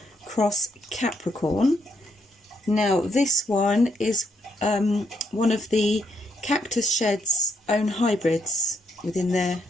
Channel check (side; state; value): both; normal; correlation 0.76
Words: cross Capricorn. Now this one is one of the Cactus Shed's own hybrids within their